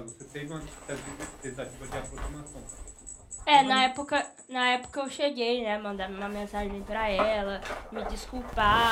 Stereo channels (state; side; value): identical; both; correlation 1.00